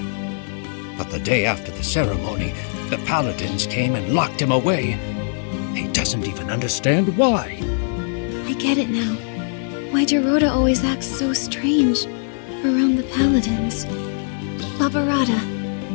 But the day after the ceremony, the Paladins came and locked him away. He doesn't even understand why. I get it now. Why Geroda always acts so strange around the Paladins. Barbarata,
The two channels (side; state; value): right; silent; 55 dB below the other